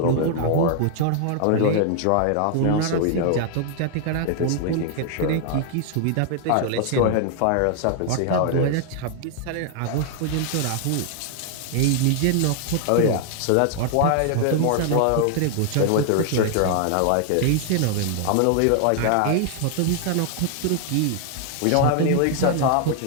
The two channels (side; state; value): both; different; correlation 0.00